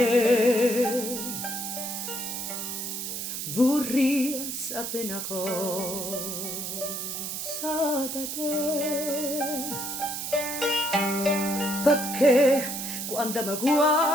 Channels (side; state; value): right; noise; hiss, 4 dB below the sound